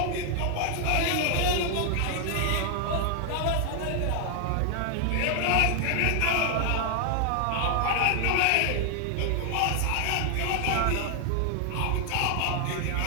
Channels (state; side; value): different; both; correlation 0.00